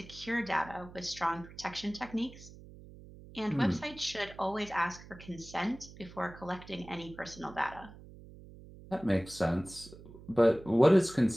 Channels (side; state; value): right; noise; hum, 18 dB below the sound